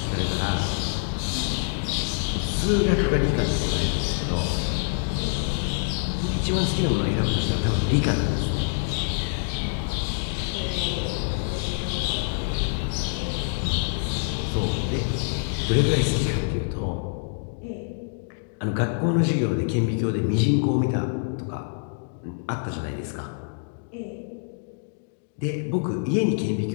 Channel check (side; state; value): right; silent; digital silence